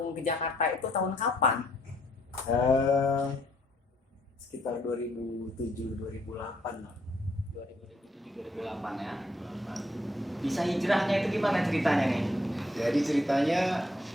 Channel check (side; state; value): both; normal; correlation 0.69